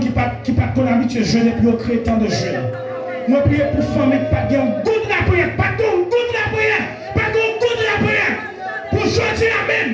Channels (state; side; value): identical; both; correlation 1.00